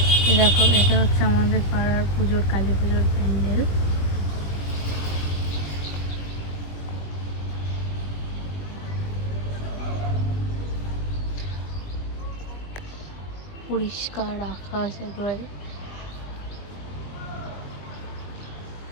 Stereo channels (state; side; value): late; right; 21 ms